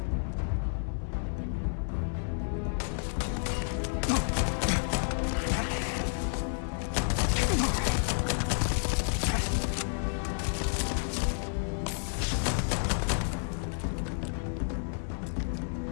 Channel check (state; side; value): silent; right; 57 dB below the other